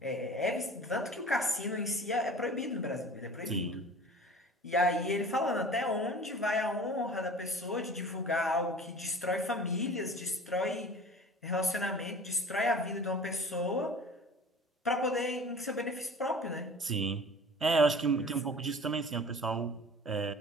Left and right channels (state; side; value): normal; both; correlation 0.42